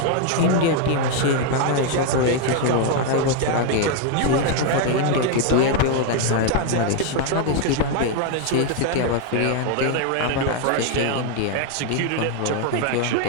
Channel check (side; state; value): both; different; correlation 0.00